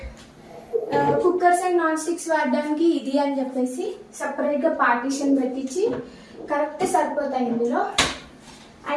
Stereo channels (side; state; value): both; identical; correlation 1.00